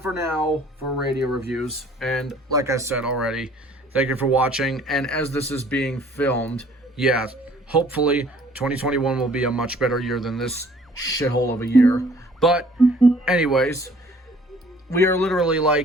for now for radio reviews. And like I said already, thank you for watching. And as this is being filmed, yeah, hopefully 2021 will be a much better year than this shithole of a year. But anyways, we are literally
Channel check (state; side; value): normal; both; correlation 0.56